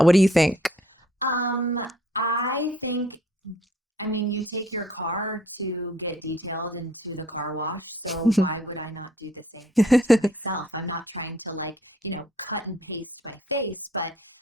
What do you think? I think, you take your car to get detailed into the car wash. So why would I not do the same thing to myself? I'm not trying to like, cut and paste my face. But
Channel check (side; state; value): both; normal; correlation 0.60